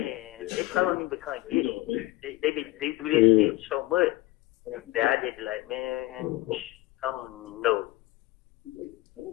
they probably don't even come get me. They do this shit so much that I just be like, man, I don't even know.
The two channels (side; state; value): right; quieter; 18.7 dB